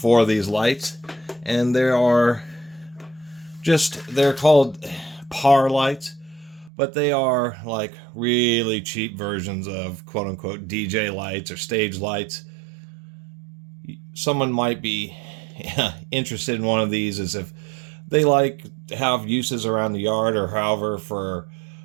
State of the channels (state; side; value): drops out; left; at 6.7 s